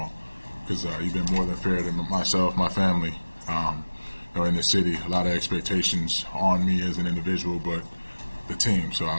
because you've been more than fair to myself, my family, in the city. A lot of expectations on me as an individual, but the team. So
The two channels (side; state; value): both; inverted; correlation -1.00